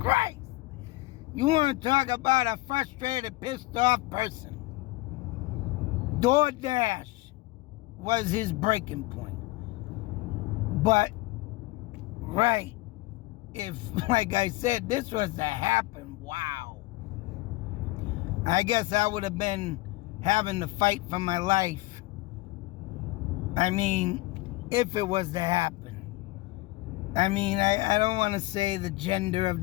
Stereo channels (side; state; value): right; quieter; 20.8 dB